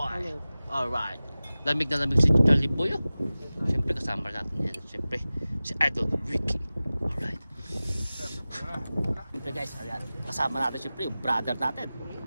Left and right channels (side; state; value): both; inverted; correlation -0.97